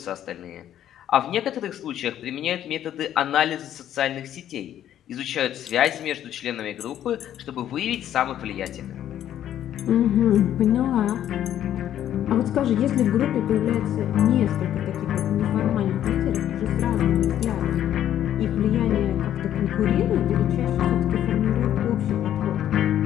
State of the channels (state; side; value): quieter; right; 11.1 dB